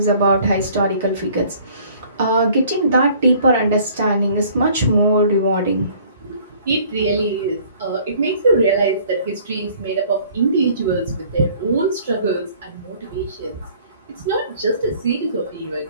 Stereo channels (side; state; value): both; inverted; correlation -0.55